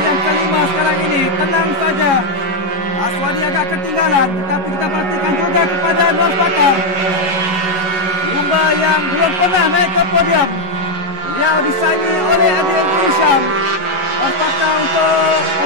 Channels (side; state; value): left; late; 11 ms